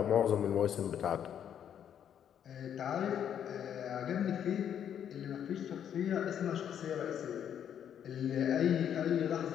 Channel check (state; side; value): quieter; right; 9.2 dB